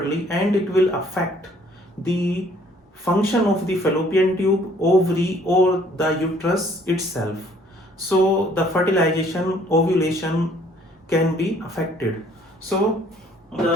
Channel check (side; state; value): both; normal; correlation 0.59